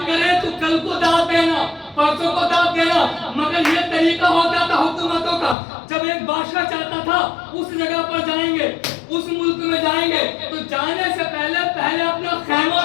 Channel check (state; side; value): drops out; right; at 5.6 s